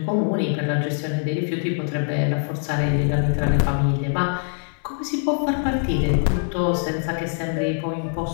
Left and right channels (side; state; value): right; silent; 55 dB below the other